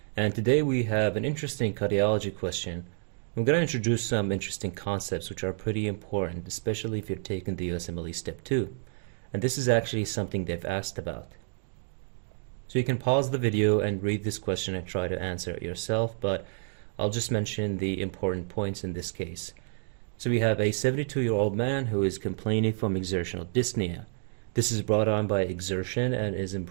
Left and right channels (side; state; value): left; silent; 58 dB below the other